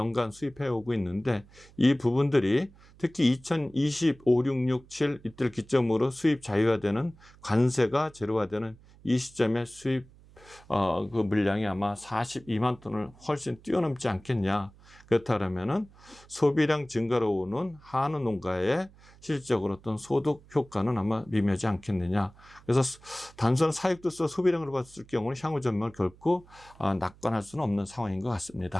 수입해 오고 있는데, 이 부분들이 특히 2025, 6, 6, 7 이때를 기점으로 수입 자유화되는, 관세가 제로화되는 이 시점에 수입 그 물량이 아마 42만 톤을 훨씬 뛰어넘지 않겠냐. 그렇다면은 소비량 증가로 오는 한우 농가의 실질적으로 어떤 소득 효과는 아마 미미하지 않겠느냐. 그래서 단순한 사육두수 소비량으로 봤을 경우는 향후 전망을 결코 낙관할 수는 없는 상황인 것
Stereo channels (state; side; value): noise; right; hum, 25 dB below the sound